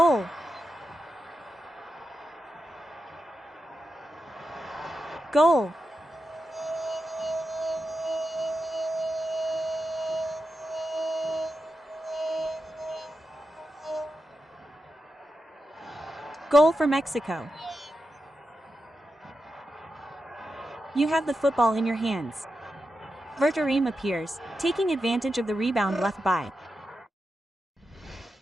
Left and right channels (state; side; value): normal; both; correlation 0.89